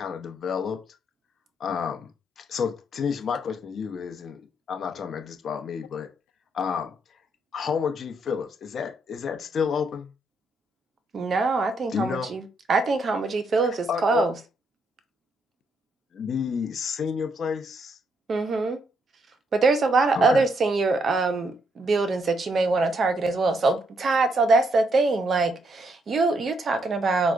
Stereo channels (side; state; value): both; normal; correlation 0.75